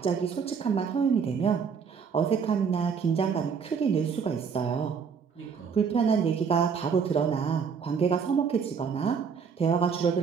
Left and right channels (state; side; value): quieter; left; 6.3 dB